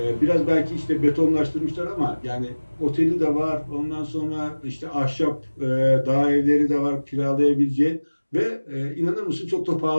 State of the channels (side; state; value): both; inverted; correlation -1.00